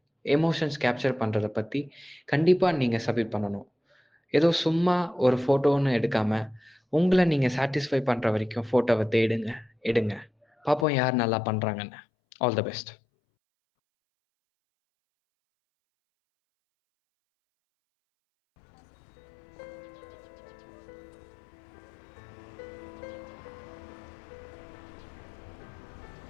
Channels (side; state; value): right; drops out; at 10.9 s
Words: எமோஷன்ஸ் கேப்சர் பண்றத பத்தி கண்டிப்பா நீங்க சப்மிட் பண்ணணும். ஏதோ சும்மா ஒரு ஃபோட்டோன்னு எடுக்காம, உங்கள நீங்க சாட்டிஸ்ஃபை பண்ற வரைக்கும் ஃபோட்டோவ தேடுங்க, எடுங்க. பாப்போம் யார் நல்லா பண்றாங்கன்னு. All the best.